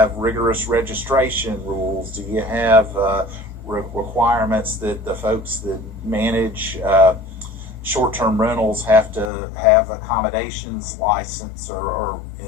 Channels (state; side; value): drops out; right; at 9.3 s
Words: rigorous registration rules? Do you have requirements that the folks that manage short-term rentals have to have accommodations license or